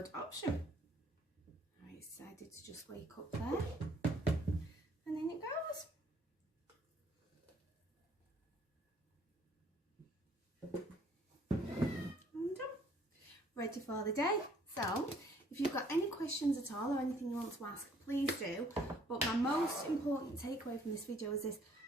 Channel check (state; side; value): normal; both; correlation 0.61